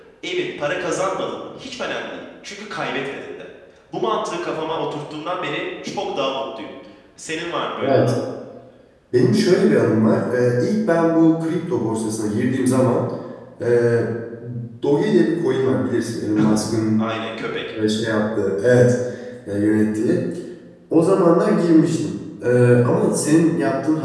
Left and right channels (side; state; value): both; identical; correlation 1.00